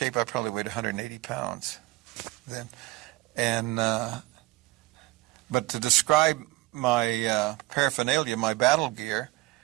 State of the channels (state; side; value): quieter; left; 20.6 dB